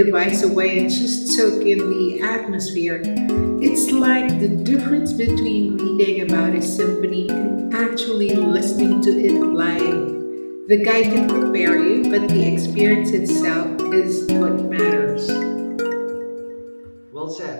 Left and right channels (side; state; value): both; inverted; correlation -1.00